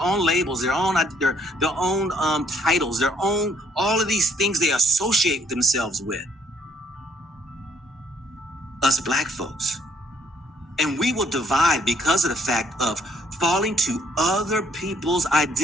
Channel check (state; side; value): normal; both; correlation 0.67